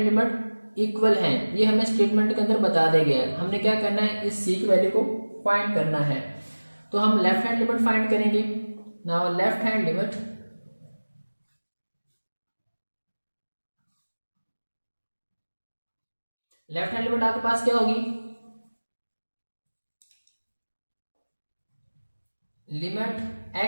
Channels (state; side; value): inverted; both; correlation -1.00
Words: लिमिट इक्वल है, ये हमें स्टेटमेंट के अंदर बता दिया गया है। हमने क्या करना है, इस c की वैल्यू को फाइंड करना है। तो हम लेफ्ट हैंड लिमिट फाइंड करेंगे। नाउ लेफ्ट हैंड लिमिट आपके पास क्या होगी, limit